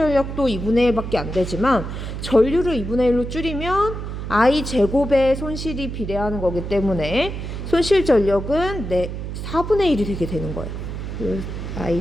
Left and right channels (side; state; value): right; noise; hum, 6 dB below the sound